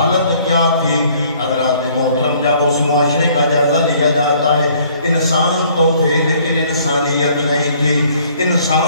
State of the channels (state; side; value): inverted; both; correlation -0.59